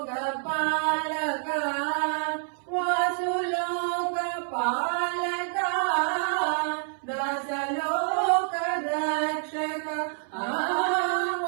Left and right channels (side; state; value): left; silent; 60 dB below the other